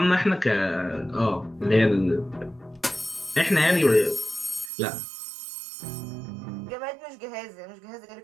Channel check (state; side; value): drops out; left; at 4.7 s